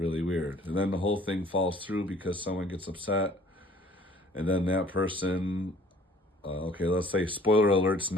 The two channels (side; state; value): both; normal; correlation 0.54